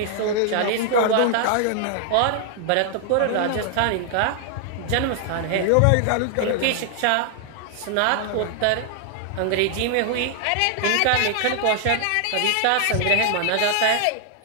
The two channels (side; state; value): both; different; correlation 0.00